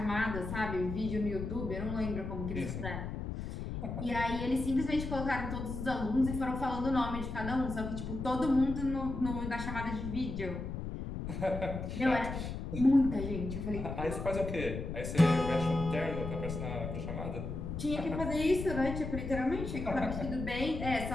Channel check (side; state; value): left; noise; rumble, 5 dB below the sound